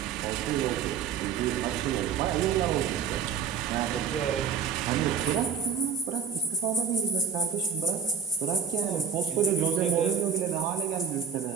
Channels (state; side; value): quieter; left; 7.0 dB